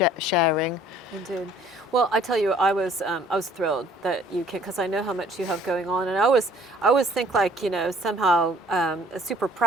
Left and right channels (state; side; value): normal; both; correlation 0.56